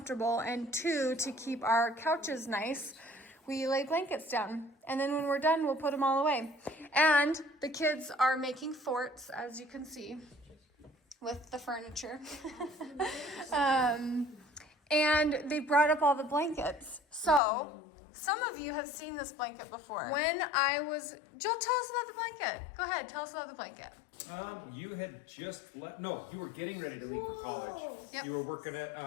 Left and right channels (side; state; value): right; drops out; at 17.4 s